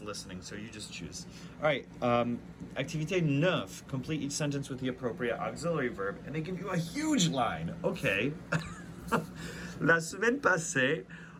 listening. So you just choose. All right. Activité 9. Complete each sentence with the appropriate auxiliary verb, and they give you a huge line. Okay. La semaine passée.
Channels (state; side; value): identical; both; correlation 1.00